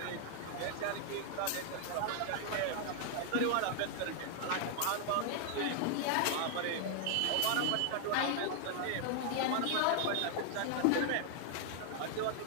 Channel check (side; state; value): both; different; correlation 0.00